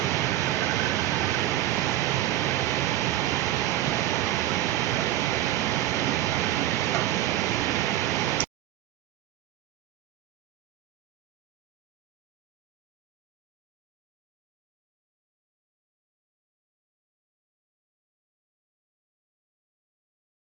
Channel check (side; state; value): left; quieter; 14.0 dB